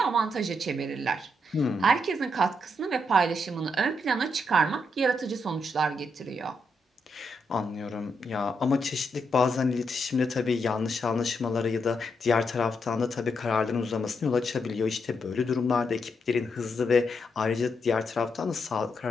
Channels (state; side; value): normal; both; correlation 0.80